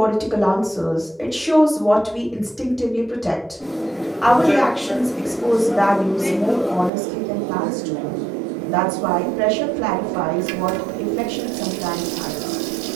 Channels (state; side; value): drops out; left; at 6.9 s